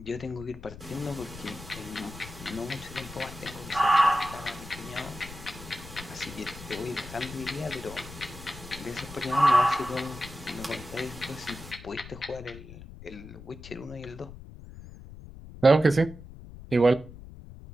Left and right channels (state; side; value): noise; left; rumble, 14 dB below the sound